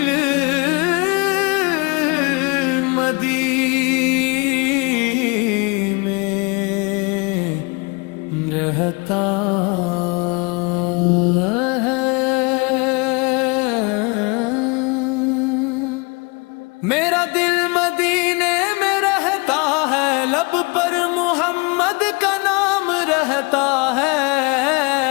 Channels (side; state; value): right; quieter; 29.6 dB